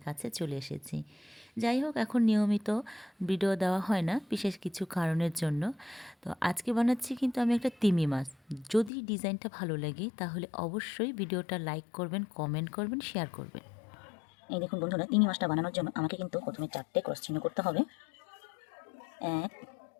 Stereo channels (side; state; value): right; drops out; at 8.9 s